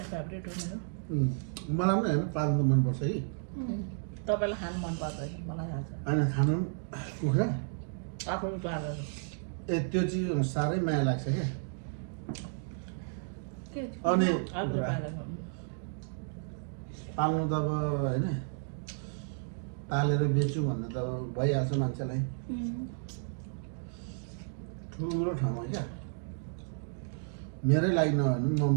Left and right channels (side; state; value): left; silent; digital silence